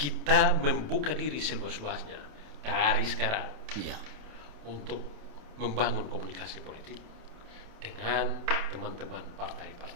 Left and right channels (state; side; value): late; left; 27 ms